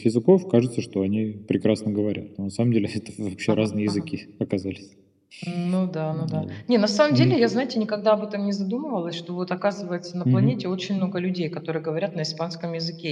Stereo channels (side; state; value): both; identical; correlation 1.00